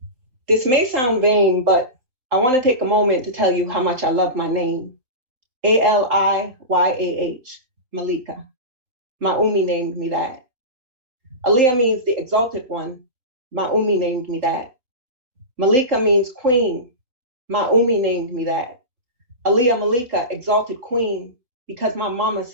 This may sound vain, but I want to take a moment to tell you how much I love my name. ALIYAH, Malika. Ma'umi named me that. Aliyah means the exalted one. Ma'umi named me that. Malika means queen. Ma'umi named me that. Aliyah Malika, exalted queen, because my mama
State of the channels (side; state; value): left; late; 3.9 ms